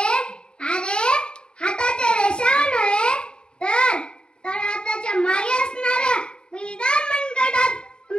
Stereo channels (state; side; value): late; right; 0.050 ms